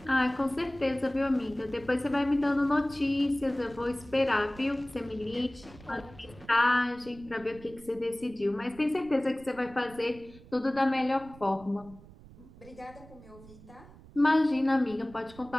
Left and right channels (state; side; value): noise; right; rumble, 21 dB below the sound